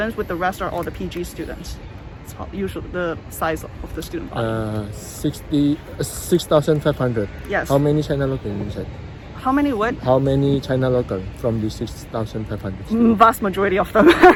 with the rest are all the PG students. It's usually the size of the student body. 6,500. Yes. How many China local inside? How many what? How many China local from the 6,500? Vast majority of them.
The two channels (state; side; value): identical; both; correlation 1.00